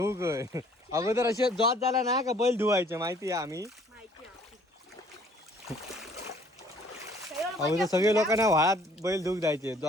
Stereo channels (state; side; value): normal; both; correlation 0.58